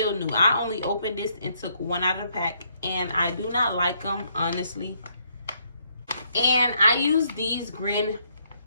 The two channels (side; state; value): both; inverted; correlation -0.72